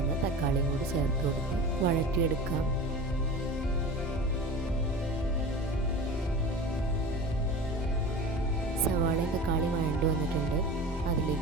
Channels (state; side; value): normal; both; correlation 0.34